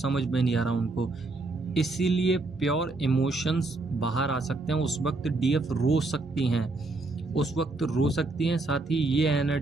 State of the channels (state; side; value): quieter; left; 3.1 dB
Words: में नहीं आ रहा उनको। इसीलिए प्योर इमोशंस बाहर आ सकते हैं। उस वक्त डीएफ रो सकती हैं, उस वक्त रो सकती हैं। साथ ही ये